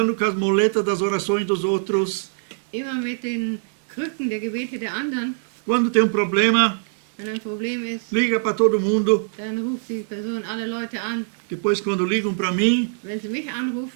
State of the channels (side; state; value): left; silent; digital silence